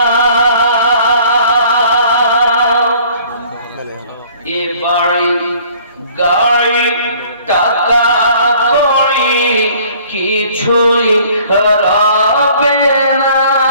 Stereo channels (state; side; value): inverted; both; correlation -0.54